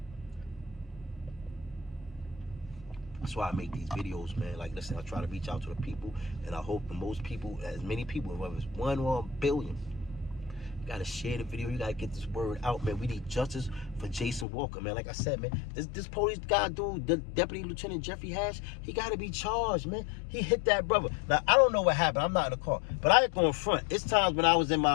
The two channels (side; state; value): right; drops out; at 14.5 s